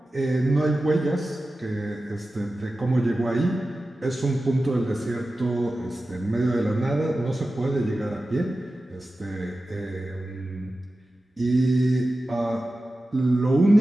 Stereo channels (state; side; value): normal; both; correlation 0.94